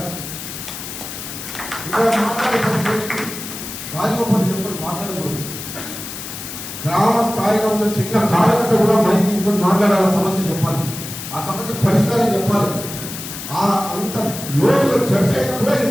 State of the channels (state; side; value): noise; left; hiss, 9 dB below the sound